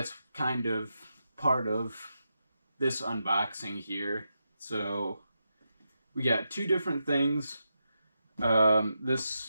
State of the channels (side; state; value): both; inverted; correlation -0.86